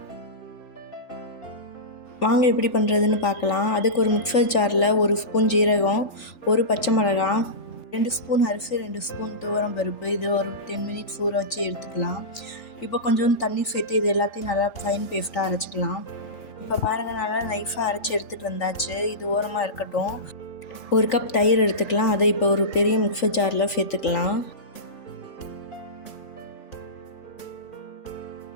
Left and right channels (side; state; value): right; late; 3.5 ms